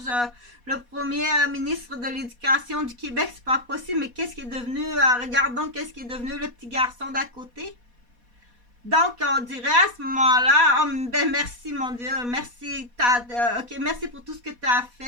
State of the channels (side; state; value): left; late; 4.2 ms